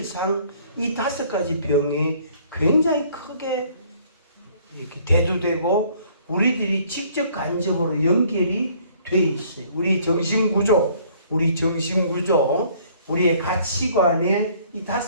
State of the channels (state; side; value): inverted; both; correlation -0.59